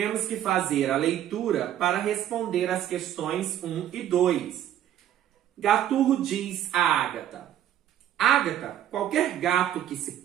que fazer a leitura para responder as questões 1 e 2. Gaturro diz a Ágata: Ágata, qualquer gato que se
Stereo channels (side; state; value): left; quieter; 11.3 dB